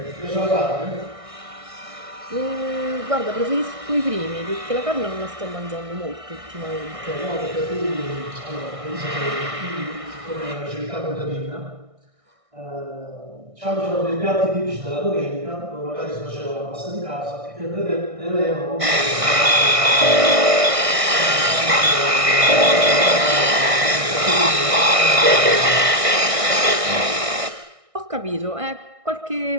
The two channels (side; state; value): left; late; 1.6 ms